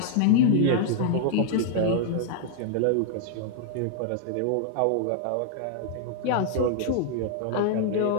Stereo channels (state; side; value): different; both; correlation -0.01